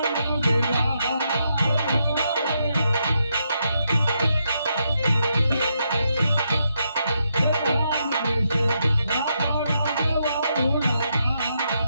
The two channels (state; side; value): inverted; both; correlation -0.80